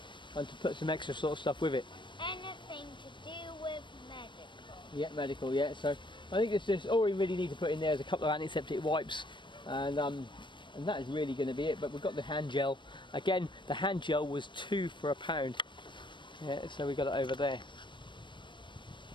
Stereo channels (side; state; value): right; late; 0.23 ms